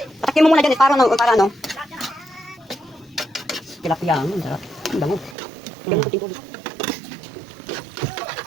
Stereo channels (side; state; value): left; drops out; at 5.4 s